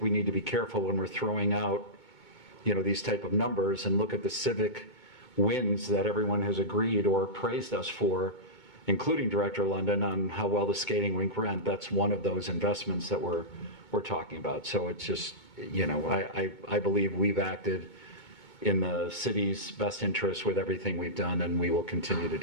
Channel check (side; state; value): right; late; 2.2 ms